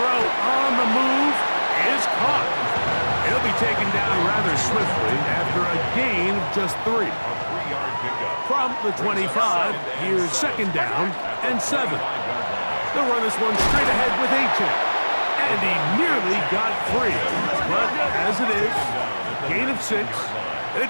on the move is caught. He'll be taken down rather swiftly after a gain of just 3. A 3-yard pickup. From the 25, here's 2nd down and 7. They'll run this one straight ahead with Achek. And he nearly got free. But as it is, gain of 6.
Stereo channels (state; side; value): inverted; both; correlation -1.00